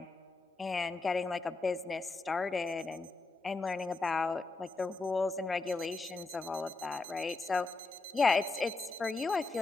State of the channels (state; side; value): quieter; right; 3.6 dB